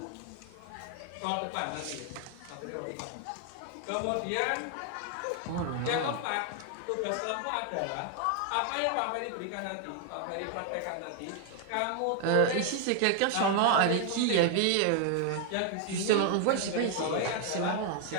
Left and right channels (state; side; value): different; both; correlation 0.00